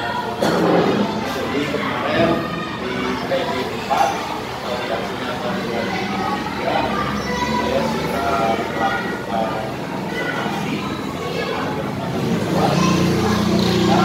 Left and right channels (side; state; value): both; identical; correlation 1.00